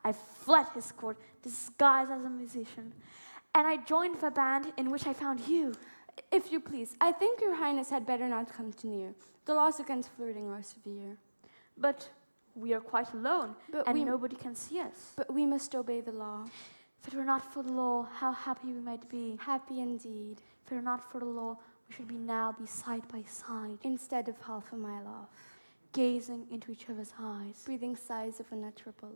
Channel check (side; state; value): both; inverted; correlation -1.00